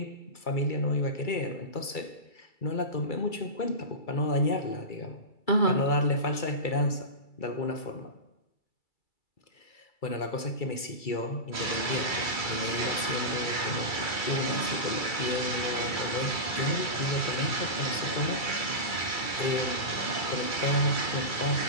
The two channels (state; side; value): late; right; 2.3 ms